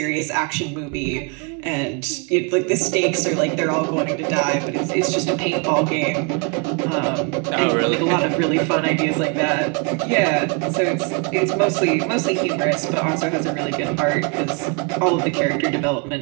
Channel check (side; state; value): left; quieter; 34.3 dB